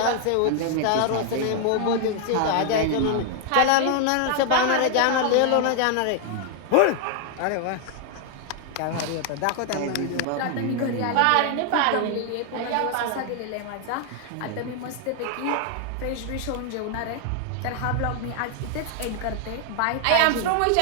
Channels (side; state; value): both; different; correlation 0.00